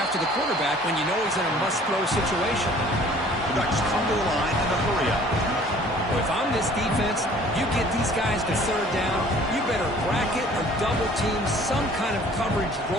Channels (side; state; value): both; normal; correlation 0.52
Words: the quarterback when you know he's in a must-throw situation. The Ducks come to the line in a hurry up. Well, if I'm this defense, you get these guys to 3rd down, you better bracket or double team some kind of coverage